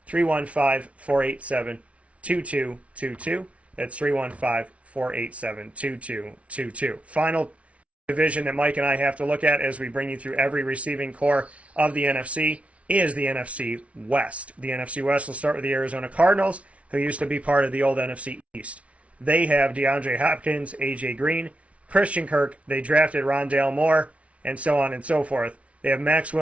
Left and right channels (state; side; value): late; left; 0.064 ms